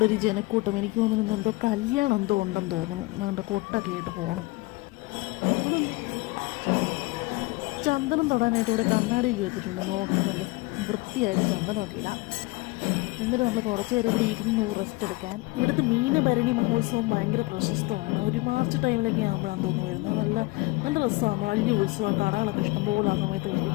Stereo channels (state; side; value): quieter; right; 23.3 dB